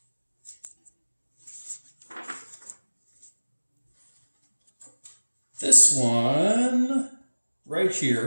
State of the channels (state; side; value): inverted; both; correlation -1.00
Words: This one right